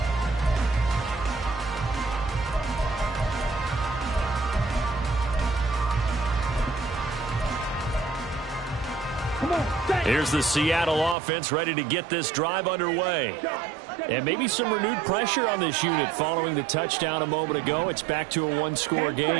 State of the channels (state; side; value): drops out; left; at 11.2 s